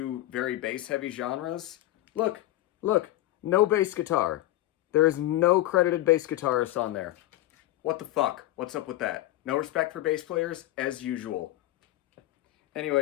very bass heavy genres, look, look, no bass guitar. There is no credited bass guitarist on there. What the fuck? What's up with that? No respect for bass players, as usual.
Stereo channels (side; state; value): right; quieter; 15.5 dB